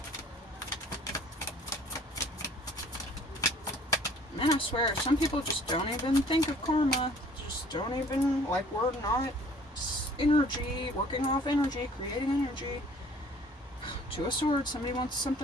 Man, I swear, some people just don't even think of karma. Just don't even, like, we're not energy, working off energy, creating energy. Two of Swords, somebody wants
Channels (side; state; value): both; normal; correlation 0.53